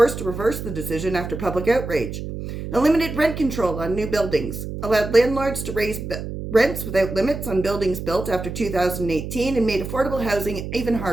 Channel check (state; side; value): noise; right; hum, 7 dB below the sound